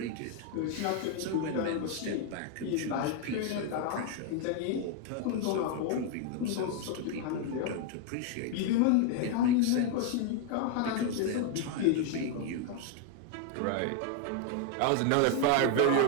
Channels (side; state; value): both; different; correlation 0.00